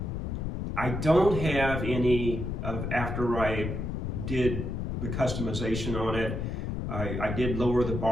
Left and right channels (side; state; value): left; noise; rumble, 3 dB below the sound